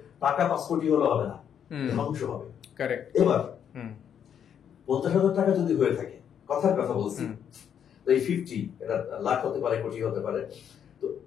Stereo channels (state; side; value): quieter; right; 8.6 dB